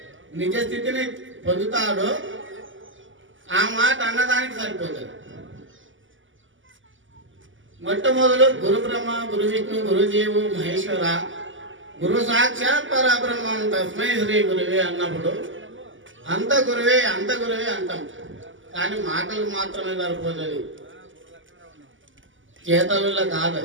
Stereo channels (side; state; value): left; late; 0.57 ms